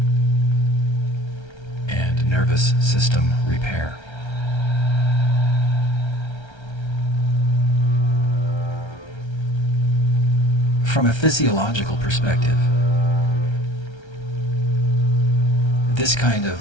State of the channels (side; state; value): right; late; 1.3 ms